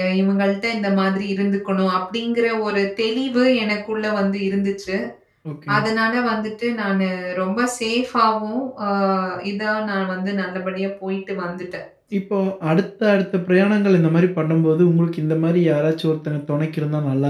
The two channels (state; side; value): identical; both; correlation 1.00